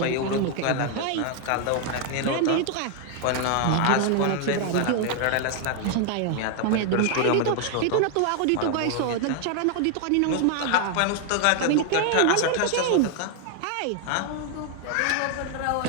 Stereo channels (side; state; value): both; different; correlation 0.00